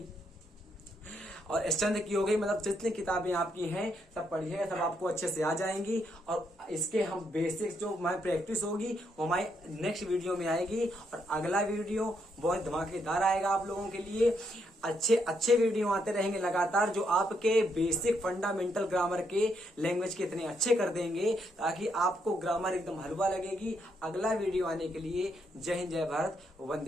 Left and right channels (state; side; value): normal; both; correlation 0.76